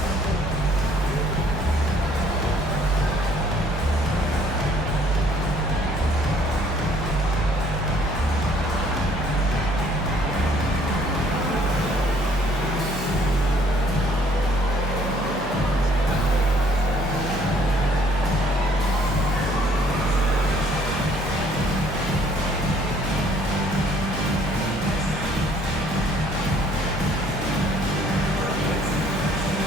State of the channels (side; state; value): both; normal; correlation 0.61